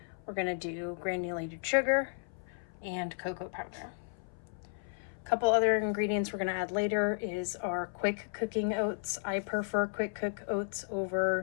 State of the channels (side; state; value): right; silent; 55 dB below the other